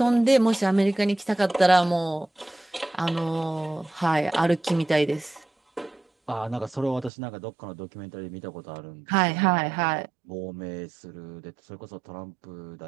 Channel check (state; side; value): drops out; left; at 7.1 s